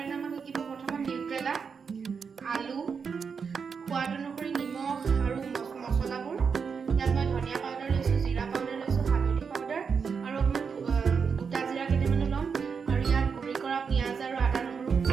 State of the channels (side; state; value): left; quieter; 5.9 dB